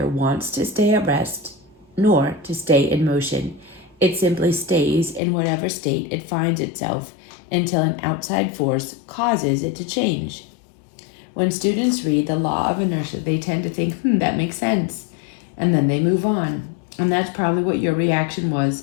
wants to stay at rest nor to stay in motion. It simply stays in whatever state it finds itself until an outside force causes it to change. When students read the law of inertia, they tend to think, that makes sense. And then they move on. And that's probably what your reaction was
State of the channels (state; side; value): drops out; right; at 5.2 s